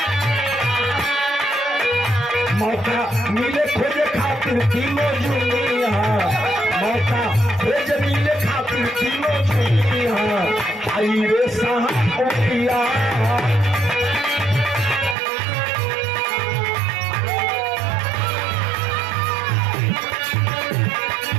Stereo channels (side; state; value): left; drops out; at 15.2 s